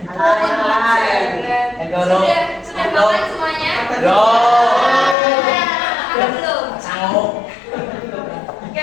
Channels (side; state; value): right; drops out; at 5.2 s